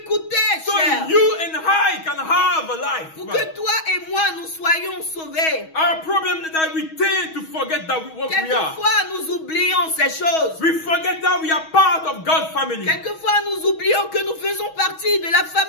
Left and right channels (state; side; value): late; right; 6.3 ms